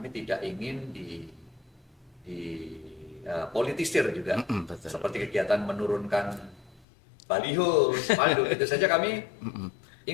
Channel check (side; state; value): right; drops out; at 6.9 s